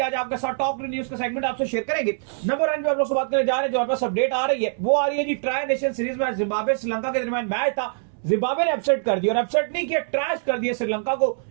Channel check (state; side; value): silent; left; 63 dB below the other